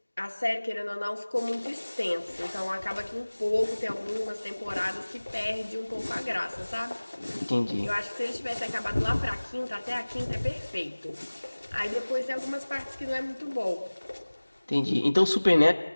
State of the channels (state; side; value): inverted; both; correlation -1.00